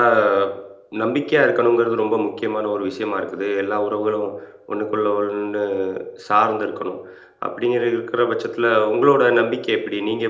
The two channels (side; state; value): both; identical; correlation 1.00